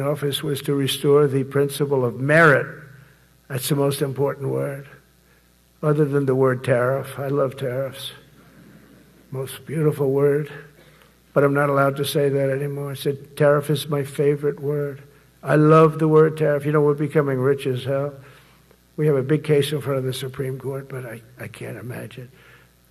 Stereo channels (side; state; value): both; identical; correlation 1.00